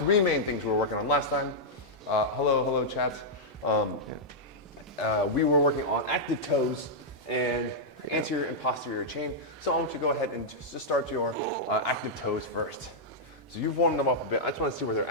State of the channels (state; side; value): normal; both; correlation -0.07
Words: main things we were working on last time. Hello, chat. We were working on active toes and anterior and posterior chain. So I want you to go ahead and just start your active toes first. So you've warmed them up a bit. I just want to see where they're